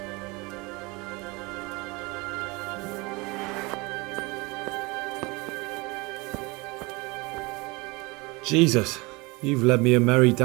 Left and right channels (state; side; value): quieter; left; 25.5 dB